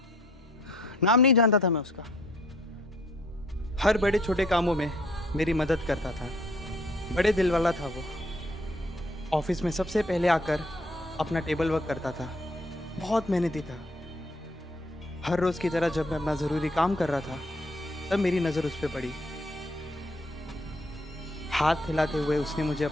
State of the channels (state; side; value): normal; both; correlation 0.63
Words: नाम नहीं जानता था मैं उसका। हर बड़े छोटे कामों में मेरी मदद करता था, बड़े दिल वाला था वो। ऑफिस में सबसे पहले आकर अपना टेबल वर्क करता था, बहुत मेहनती था। हर रोज की तरह जब मैं अपना ज़रूरी काम कर रहा था तब मेरी नज़र उस पर पड़ी। हाथ हिलाते हुए उसने मुझे